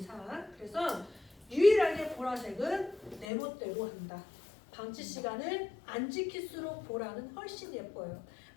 그래서 유일하게 보라색은 내 멋대로 한다. 방치 시간을 안 지킬수록 보라는 훨씬 예뻐요.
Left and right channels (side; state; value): right; drops out; at 3.2 s